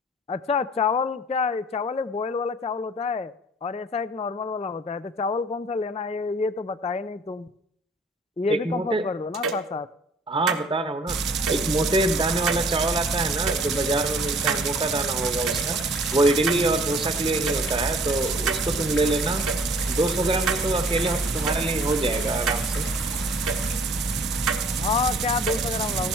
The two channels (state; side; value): normal; both; correlation 0.53